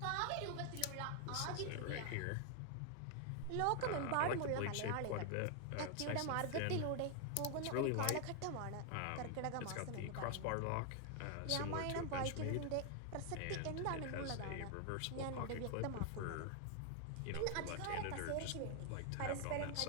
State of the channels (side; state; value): both; different; correlation 0.00